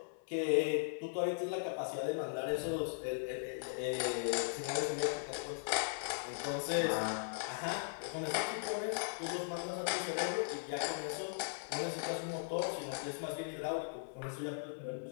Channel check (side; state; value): right; silent; 52 dB below the other